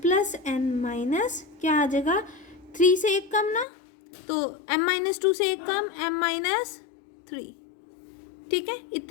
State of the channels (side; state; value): right; drops out; at 3.7 s